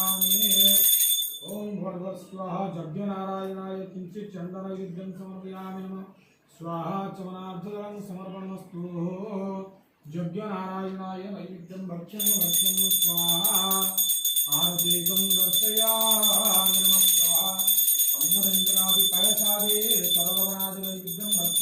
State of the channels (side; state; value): both; identical; correlation 1.00